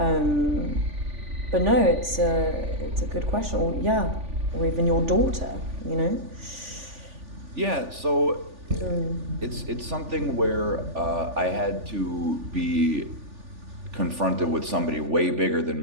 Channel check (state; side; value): late; left; 3.4 ms